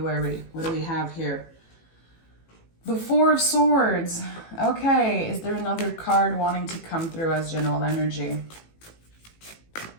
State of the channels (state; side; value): late; right; 18 ms